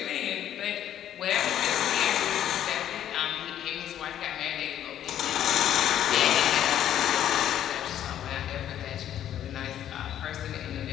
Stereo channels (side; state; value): right; quieter; 11.0 dB